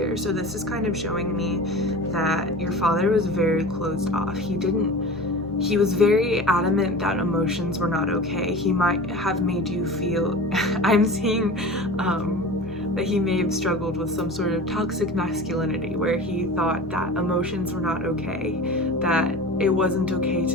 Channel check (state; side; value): normal; both; correlation 0.35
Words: So this is kind of showing me that your father was very closed off. He was very adamant that emotions were not okay. He might have made you feel, I'm seeing that he may have struggled with some sort of toxic masculinity, where he thought that emotions were not okay, that it wasn't okay